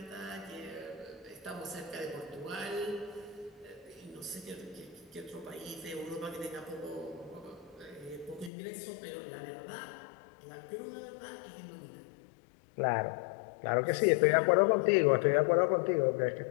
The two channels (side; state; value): right; drops out; at 8.5 s